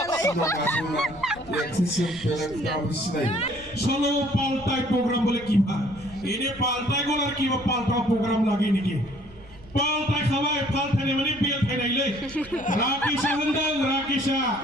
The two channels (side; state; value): right; noise; rumble, 21 dB below the sound